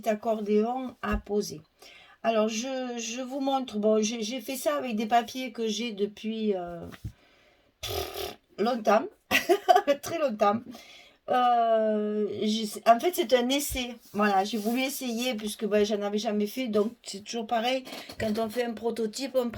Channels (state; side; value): identical; both; correlation 1.00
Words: accordéon à poser. Alors, je vous montre. Bon, j'ai fait ça avec des papiers que j'ai depuis longtemps, très longtemps. En fait, c'est un essai. Voilà, j'ai voulu essayer puisque ben, j'en avais jamais fait. Donc, c'est toujours pareil. Quand on fait un prototype, on ne